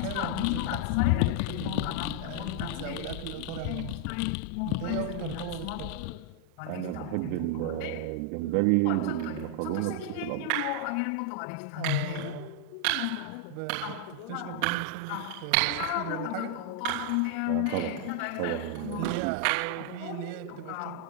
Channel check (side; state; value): both; different; correlation 0.00